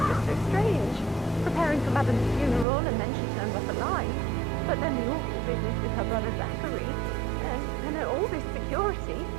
just so strange. Preparing for Madame's funeral, and then she turns up alive. But then the awful business with her brother Zachary, and all this security.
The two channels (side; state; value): left; drops out; at 2.7 s